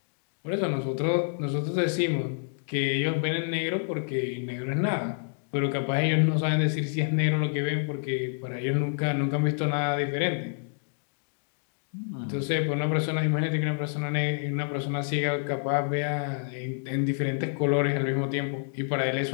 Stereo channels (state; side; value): silent; right; digital silence